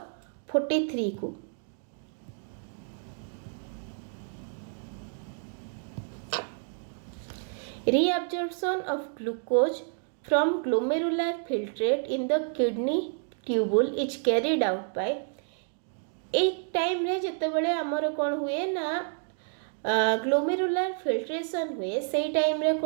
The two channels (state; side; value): silent; left; 58 dB below the other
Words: 43 को। Reabsorption of glucose from glomerular filtrate in the kidney tubule is carried out by एक टाइम रे जते बळे हमर कोन हुए ना ग्लोमेरुलर फिल्ट्रेशन हुए से टाइम रे